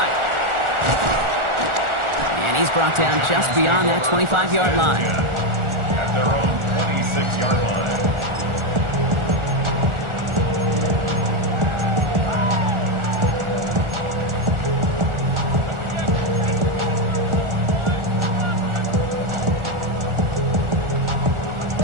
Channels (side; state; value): left; late; 1.4 ms